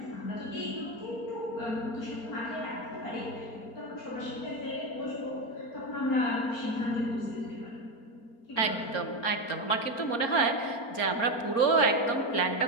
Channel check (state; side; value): late; right; 4.3 ms